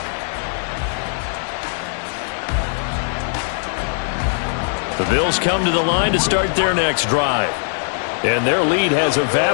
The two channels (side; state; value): right; silent; digital silence